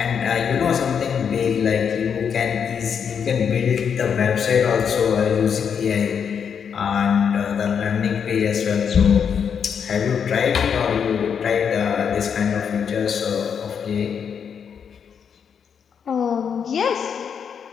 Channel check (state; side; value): quieter; right; 7.2 dB